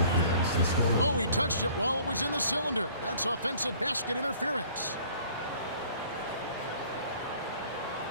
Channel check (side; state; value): both; inverted; correlation -0.54